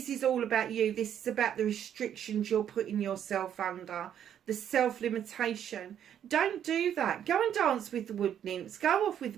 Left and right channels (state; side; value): quieter; left; 9.6 dB